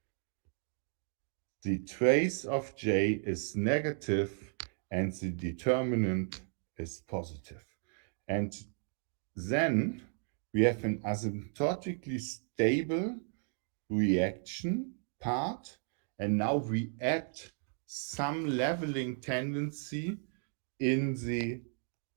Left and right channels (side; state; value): left; silent; 55 dB below the other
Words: the trace of J is negative and the determinant is positive. And then we have an asymptotically stable reaction part, and now we add some leveling tendency in the